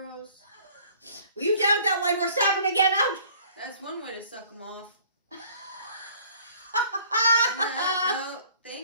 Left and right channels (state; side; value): inverted; both; correlation -0.54